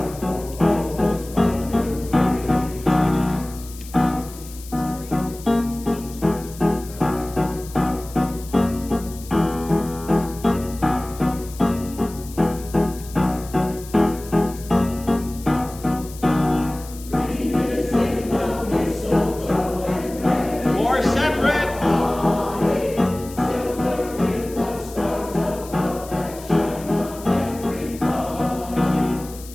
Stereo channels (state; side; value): noise; left; hiss, 17 dB below the sound